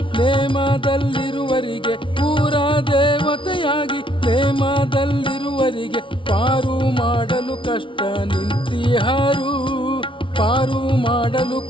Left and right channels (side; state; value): right; late; 0.25 ms